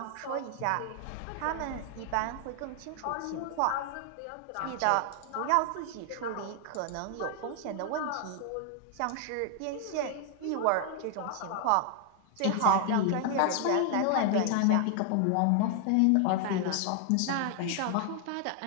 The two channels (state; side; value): different; both; correlation 0.00